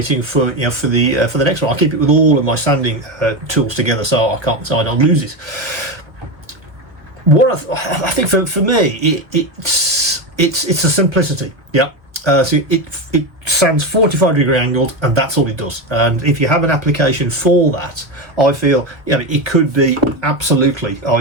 for the next one. I keep it with all of my sanding tools together, so I don't lose it. What I think for me, it's a simplicity. So it sands 45 degree angled, and that's all it does. And if you have an application for that, I feel it could be absolutely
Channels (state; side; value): late; left; 1.0 ms